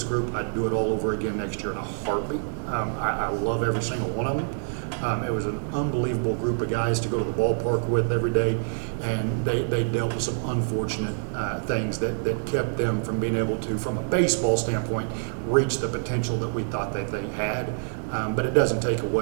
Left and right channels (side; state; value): left; silent; 61 dB below the other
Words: group, I'd do it all over again next year in a heartbeat. I love every single one of them. It was an unbelievable group of guys to go to the ballpark with every day, and they dealt with some unfortunate things that kept them from being able to, from a baseball standpoint, reach the potential that we thought that they had. But it doesn't take